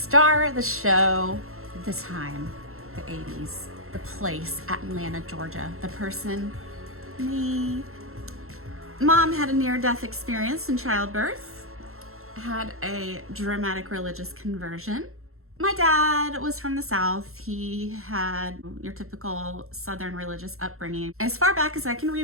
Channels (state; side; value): late; left; 0.62 ms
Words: of the show, the time, the 80s, the place, Atlanta, Georgia, the person, me. Mom had a near-death experience in childbirth, had a dramatic religious conversion. My dad was from the South. He had your typical Southern religious upbringing. As far back as I can